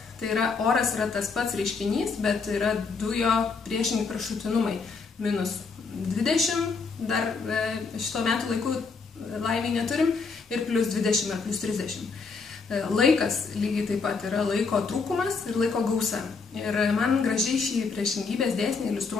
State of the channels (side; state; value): right; quieter; 4.7 dB